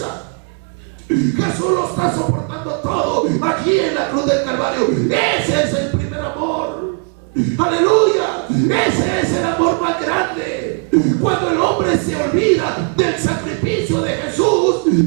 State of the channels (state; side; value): quieter; left; 37.7 dB